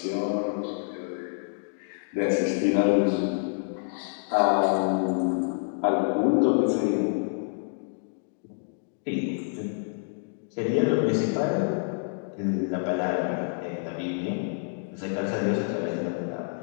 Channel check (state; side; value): silent; right; digital silence